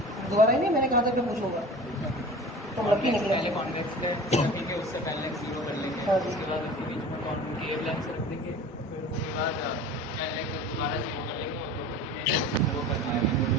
दोबारा ही नहीं, मैंने कहा था कि पूछूंगा, तो लकी निकले। पहले कॉन्वेक्स लेंस ठीक है, उससे पहले 0 कर लेंगे, हाँ। उसके बाद उसके बीच में कॉन्केव लेंस रख देंगे, फिर उसके बाद पहले दोबारा 0 कर लेंगे और वो करना है।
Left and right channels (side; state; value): both; normal; correlation 0.39